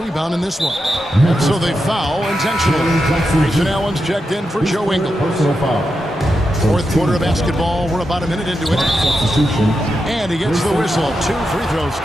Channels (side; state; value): both; normal; correlation 0.87